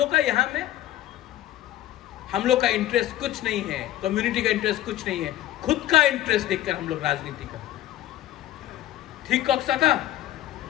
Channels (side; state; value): right; quieter; 13.9 dB